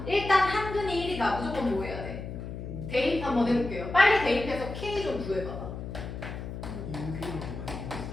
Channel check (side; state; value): left; noise; hum, 8 dB below the sound